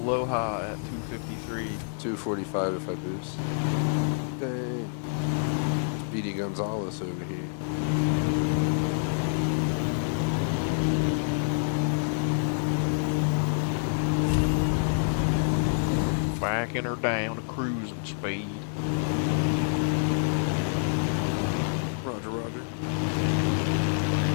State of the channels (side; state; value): right; silent; 60 dB below the other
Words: at 253. 245 if I boost. Dang. Speedy Gonzalez over here. Backing her down to cruising speed. Roger, roger.